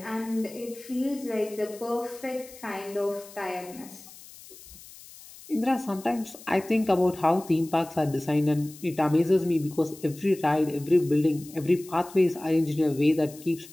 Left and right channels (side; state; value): left; noise; hiss, 19 dB below the sound